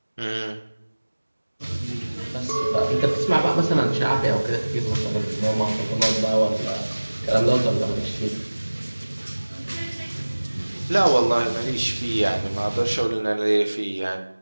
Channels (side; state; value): both; inverted; correlation -1.00